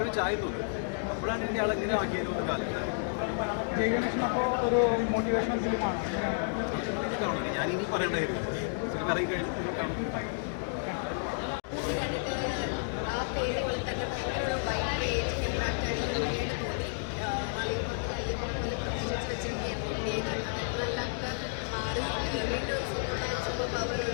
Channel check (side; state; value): right; silent; digital silence